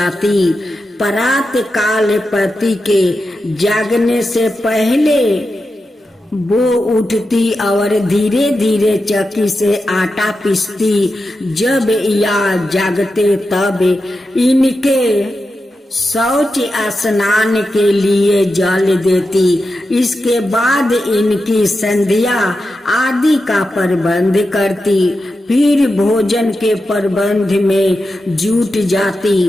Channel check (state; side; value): normal; both; correlation 0.90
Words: प्रात काल पति के जागने से पहले वो उठती और धीरे धीरे चक्की से आटा पीसती। जब या जागते तब इनके शौच स्नान के लिए जल देती। इसके बाद इनकी संध्या आदि का प्रबंध करती। फिर भोजन के प्रबंध में जुट जाती।